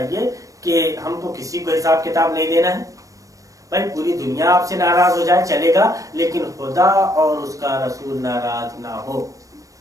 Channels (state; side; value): late; left; 0.16 ms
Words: کہ ہم کو کسی کو حساب کتاب نہیں دینا ہے. بھائی پوری دنیا آپ سے ناراض ہو جائے چلے گا, لیکن خدا اور اس کا رسول ناراض نہ ہو.